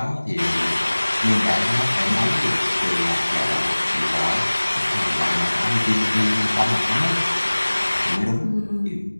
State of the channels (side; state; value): both; inverted; correlation -1.00